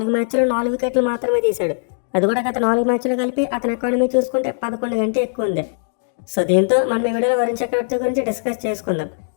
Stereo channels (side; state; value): right; silent; digital silence